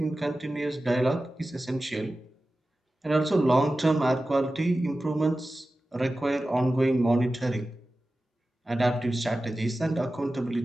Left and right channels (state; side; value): normal; both; correlation 0.95